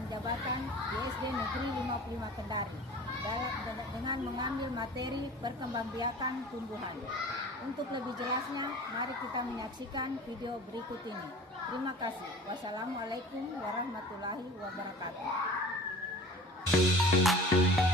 jabatan di SD Negeri 55 Kendari dengan mengambil materi perkembangbiakan tumbuhan. Untuk lebih jelasnya, mari kita menyaksikan video berikut ini. Terima kasih. Wassalamualaikum warahmatullahi wabarakatuh.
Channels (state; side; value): normal; both; correlation 0.42